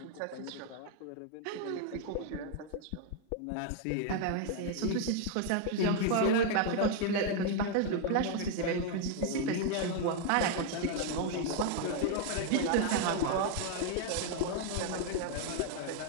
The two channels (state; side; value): different; both; correlation 0.00